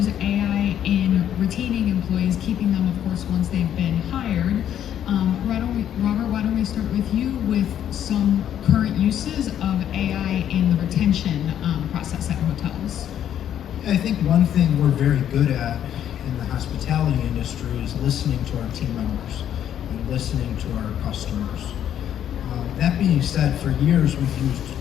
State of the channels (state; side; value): quieter; right; 10.2 dB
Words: AI in retaining employees, keeping them, of course, once they've been hired, Robert, why don't we start with you with some current uses of AI in the retention process at hotels? I think one thing we're very good at in the hospitality industry is listening to our team members and listening to our customers. That being said, for years we've used